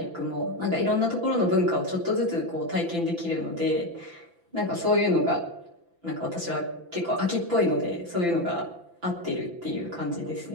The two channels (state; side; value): late; left; 5.9 ms